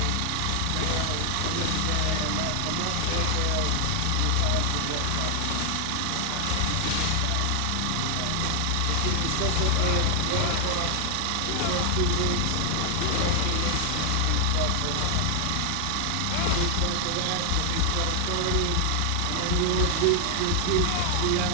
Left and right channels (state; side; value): different; both; correlation 0.00